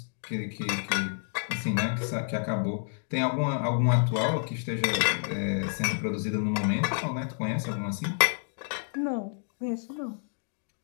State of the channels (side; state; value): right; silent; 58 dB below the other